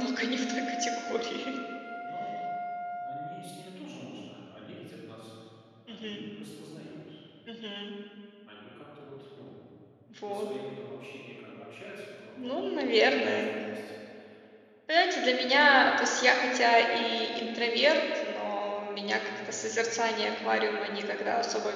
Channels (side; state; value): both; identical; correlation 1.00